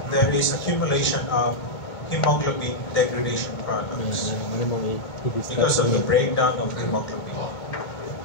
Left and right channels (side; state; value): right; late; 2.2 ms